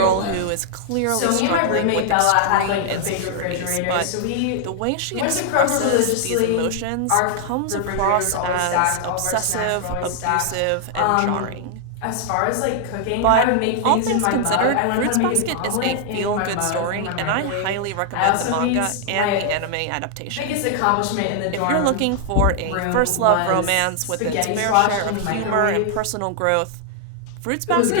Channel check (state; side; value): different; both; correlation 0.00